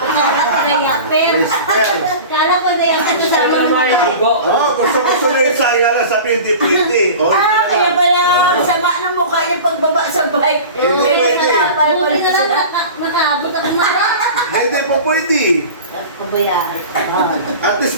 Kaya Whisper. kala ko na yung Gusto kasama mo naman yung tigo. Gusto na Isa. Yala sabi hindi pwede. Oh, kaya pala sama ng mukha yung pagbaba sa bike. Hindi pwede. Buti na lang nakaabot ako na. Hindi po pwede. Pabayaan. At least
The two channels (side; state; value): both; inverted; correlation -0.36